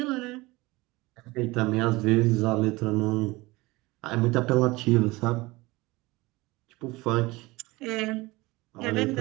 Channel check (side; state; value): left; quieter; 21.6 dB